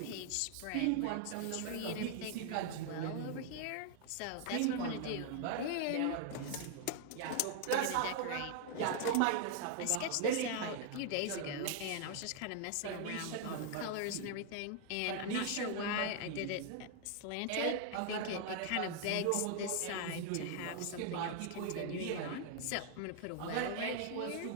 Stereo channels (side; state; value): both; different; correlation 0.00